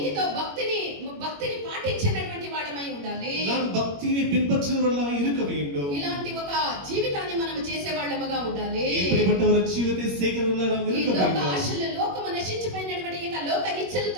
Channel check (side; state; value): left; late; 21 ms